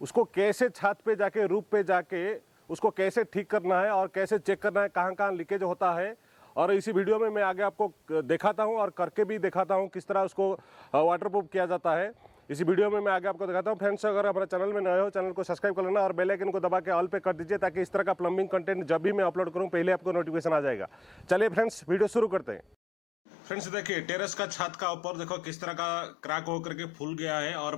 उसको कैसे छत पे जाके रूफ पे जाके उसको कैसे ठीक करना है और कैसे चेक करना है कहाँ कहाँ लीकेज होता है। और इसी वीडियो में मैं आगे आपको दिखाता हूँ और करके भी दिखाता हूँ किस तरह उसको वाटरप्रूफ किया जाता है। इसी वीडियो में मैं आगे आपको दिखाता हूँ। फ्रेंड्स, अगर हमारे चैनल में नए हो, चैनल को सब्सक्राइब कर लेना और बेल आइकन को दबा के ऑल पे कर दीजिए ताकि इस तरह का प्लम्बिंग कंटेंट जब भी मैं अपलोड करूँ पहले आपको नोटिफिकेशन आ जाएगा। चलिए फ्रेंड्स, वीडियो शुरू करते हैं। फ्रेंड्स, देखिए टेरेस का छत का ऊपर देखो किस तरह का क्रैक होकर के फूल गया है और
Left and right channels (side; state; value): both; normal; correlation 0.94